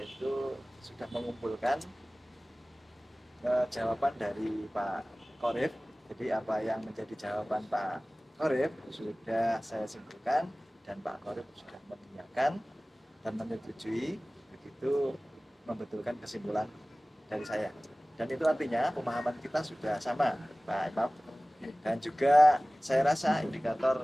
sudah mengumpulkan jawaban dari Pak Qorib. Jadi apa yang menjadi jawaban Pak Qorib sudah saya simpulkan, dan Pak Qorib sudah mengiyakan dan menyetujui, begitu membetulkan kesimpulan dari saya. Dan itu artinya pemahaman kita sudah sama Pak Imam. Dan juga saya rasa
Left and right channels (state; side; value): normal; both; correlation 0.98